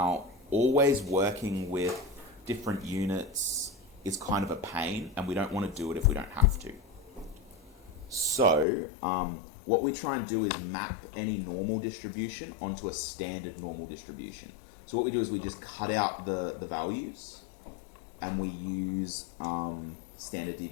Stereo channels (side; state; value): right; drops out; at 8.7 s